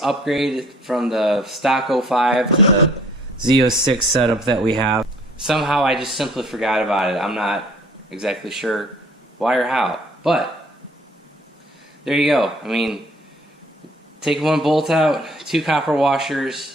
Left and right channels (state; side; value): normal; both; correlation 0.56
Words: upgrade from the stock 05 to the Z06 setup that we have, somehow I just simply forgot about it. I'm not exactly sure why or how, but there you go. I mean, take one bolt out, two copper